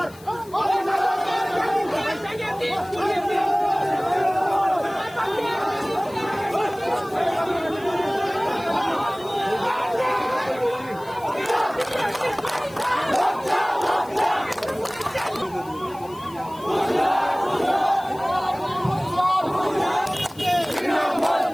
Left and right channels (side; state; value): left; noise; hiss, 23 dB below the sound